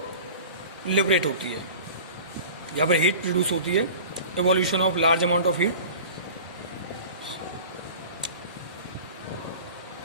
लिबरेट होती है, यहाँ पर हीट प्रोड्यूस होती है, evolution of large amount of heat.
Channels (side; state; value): both; inverted; correlation -0.39